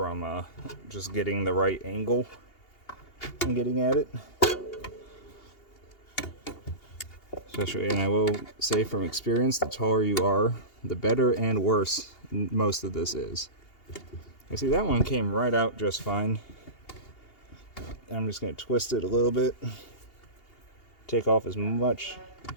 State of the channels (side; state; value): right; late; 2.8 ms